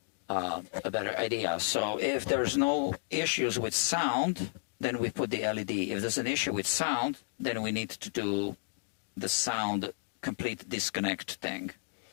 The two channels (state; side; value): silent; right; digital silence